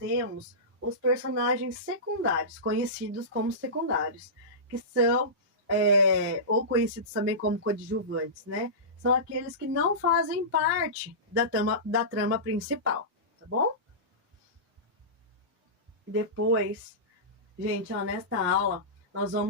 os personagens secundários, conhecidos como secundários, que são ou conhecidos também como coadjuvantes, né? São aqueles que não fazem parte da trama principal, tá bom? Depois, gente, nesta aula, nós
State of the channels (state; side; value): normal; both; correlation -0.20